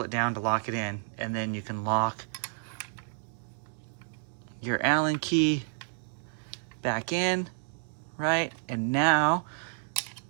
it down to lock it in. And then you can lock your Allen key back in, right? And now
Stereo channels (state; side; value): silent; left; digital silence